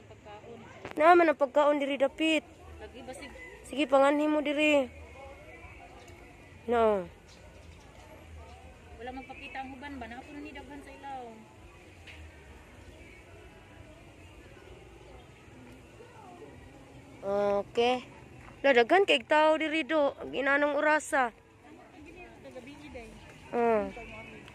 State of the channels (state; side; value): identical; both; correlation 1.00